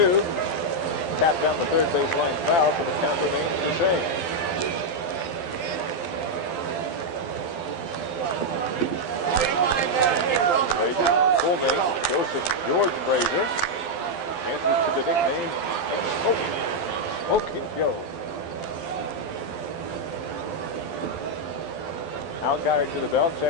Tapped down the third baseline foul, so the count remains the same. Full name, Joseph George Frazier, answers to the nickname Smoking Joe. Alkire to the belt,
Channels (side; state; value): right; late; 12 ms